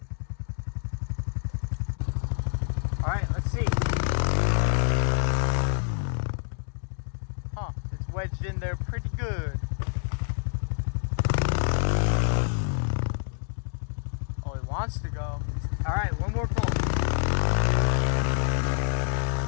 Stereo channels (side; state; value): right; silent; 60 dB below the other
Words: All right, let's see. Huh, it's wedged in there pretty good. Oh, it wants to go. All right, one more pull.